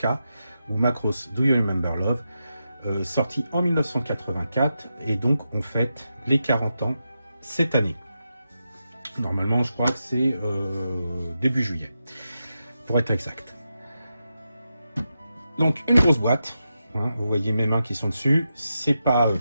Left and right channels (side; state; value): both; inverted; correlation -0.87